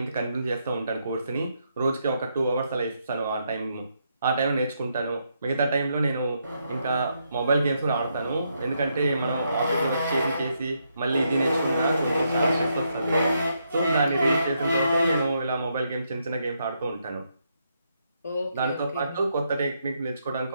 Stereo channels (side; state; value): both; inverted; correlation -0.78